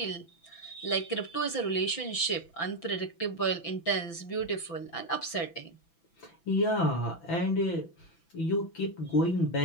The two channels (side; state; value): right; late; 6.0 ms